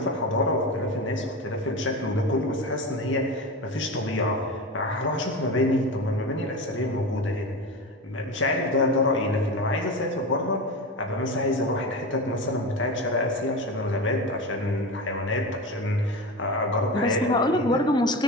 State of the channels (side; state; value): both; normal; correlation 0.24